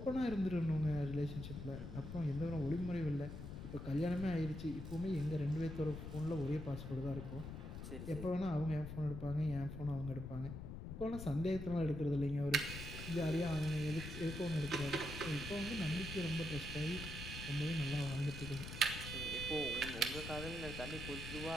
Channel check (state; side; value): noise; left; rumble, 8 dB below the sound